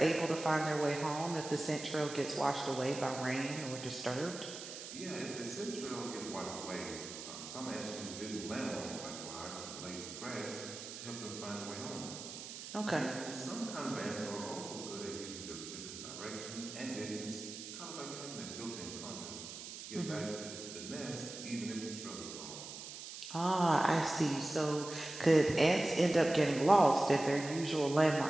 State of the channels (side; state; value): right; noise; hiss, 10 dB below the sound